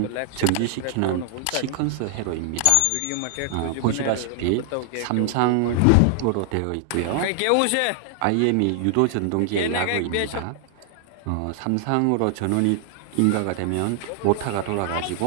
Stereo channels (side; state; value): both; different; correlation 0.00